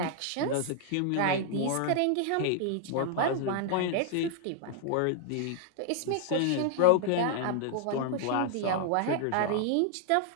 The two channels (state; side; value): different; both; correlation 0.00